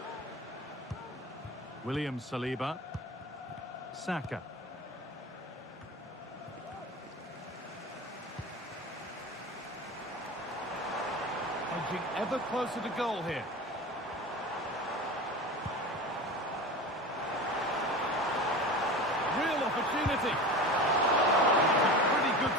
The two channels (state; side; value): normal; both; correlation 0.32